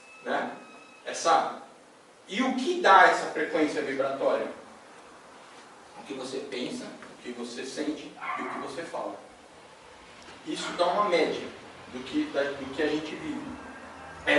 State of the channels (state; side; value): identical; both; correlation 1.00